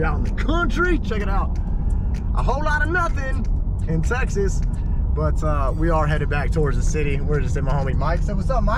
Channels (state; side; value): identical; both; correlation 1.00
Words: out in the country. Check it out. A whole lot of nothing in Texas, but we are headed back towards the city. We're just at my homie Mike. So what's up,